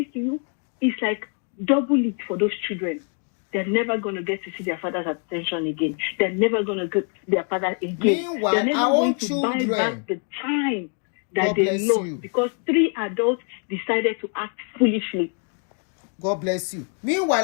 to you, it's like double it for those children. They're never going to get to see their father's attention again. They're never going to get their father again. Meanwhile, they're never our going own to children, buy back the time that God they lost you. Because 3 adults decided to act foolishly. God bless you.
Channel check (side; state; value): right; quieter; 40.0 dB